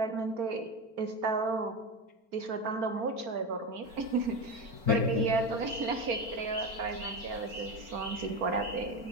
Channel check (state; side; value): late; left; 4.4 ms